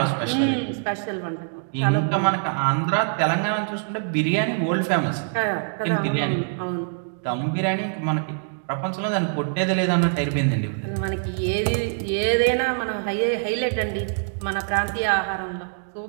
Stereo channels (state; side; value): silent; left; digital silence